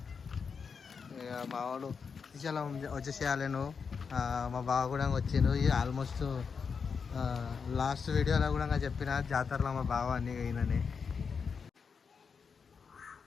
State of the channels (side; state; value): right; quieter; 5.8 dB